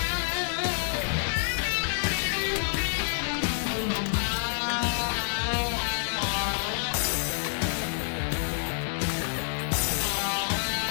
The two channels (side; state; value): right; silent; digital silence